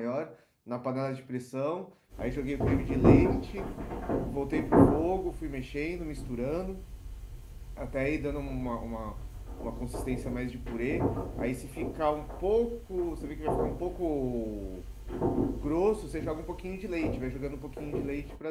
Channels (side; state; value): both; identical; correlation 1.00